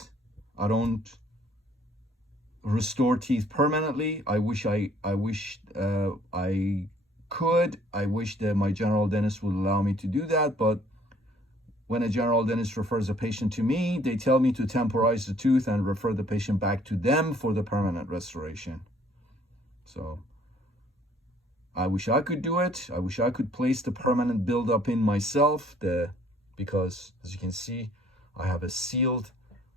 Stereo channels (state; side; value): normal; both; correlation 0.59